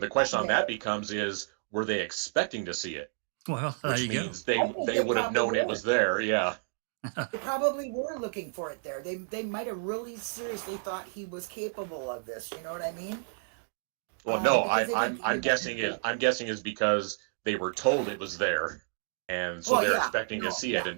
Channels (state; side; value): silent; left; digital silence